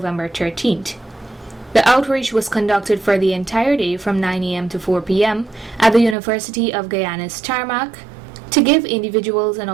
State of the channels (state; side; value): drops out; left; at 6.2 s